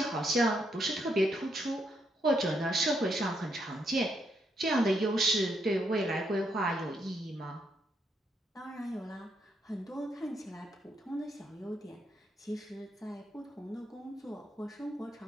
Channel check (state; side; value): normal; both; correlation 0.77